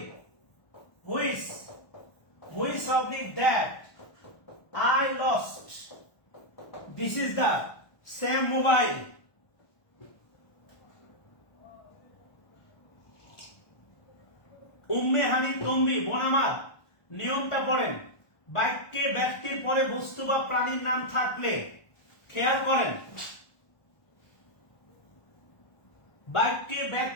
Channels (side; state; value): right; late; 1.2 ms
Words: Which oblique that I lost. This is the same mobile. Umme হানি তম্বি বোন আমার, নিয়মটা পড়েন। বাক্যে ব্যক্তির পরে বস্তু বা প্রাণীর নাম থাকলে খেয়াল করেন, বাক্যে